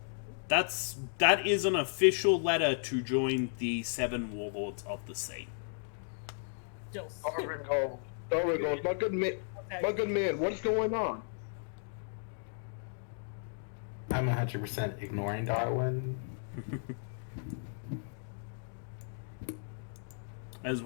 That is an official letter to join the 7 Warlords of the Sea. Still There we go. My good man, what's going on? I'm 100% ignoring Darwin. As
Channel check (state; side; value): silent; right; digital silence